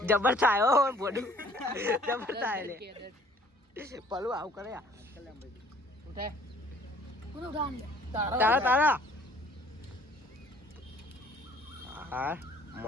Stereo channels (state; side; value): normal; both; correlation 0.56